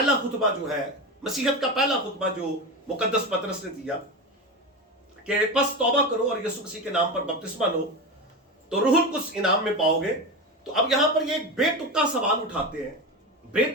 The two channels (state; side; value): normal; both; correlation 0.20